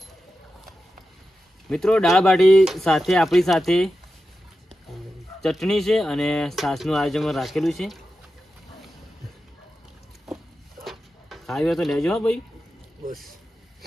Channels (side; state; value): both; normal; correlation 0.91